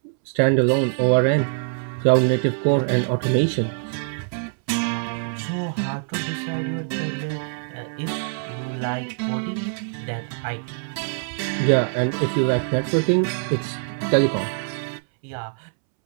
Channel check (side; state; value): left; silent; 63 dB below the other